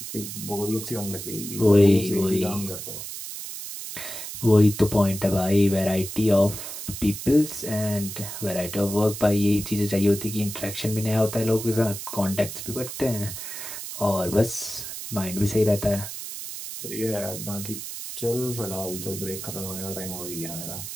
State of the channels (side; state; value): right; noise; hiss, 8 dB below the sound